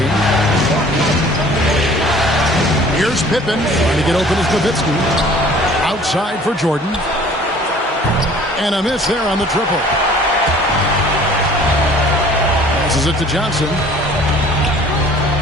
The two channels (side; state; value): both; normal; correlation 0.51